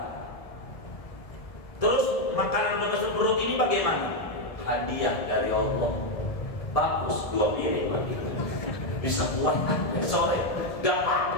Terus makanan udah masuk perut ini bagaimana? Hadiah dari Allah. Bagus, 2 piring bisa kuat sore, gak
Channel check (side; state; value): right; late; 1.7 ms